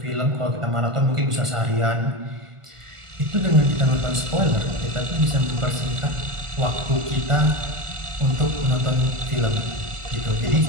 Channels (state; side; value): late; left; 1.4 ms